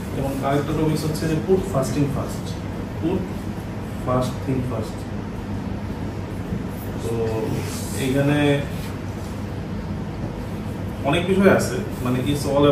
এবং আরেকটা টপিকস হচ্ছে যে put first thing first, put first thing first. তো এইখানে অনেক বিষয় আছে, মানে ইটস অল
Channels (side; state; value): both; identical; correlation 1.00